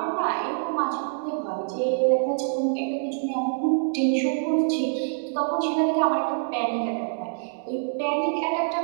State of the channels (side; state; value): left; silent; digital silence